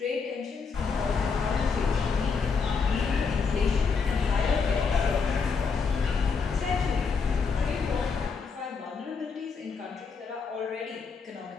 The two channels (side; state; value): right; quieter; 5.2 dB